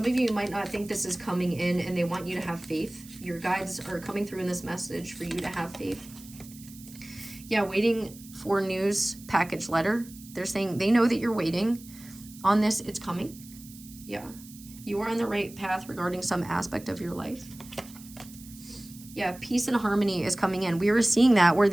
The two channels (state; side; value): noise; right; hiss, 19 dB below the sound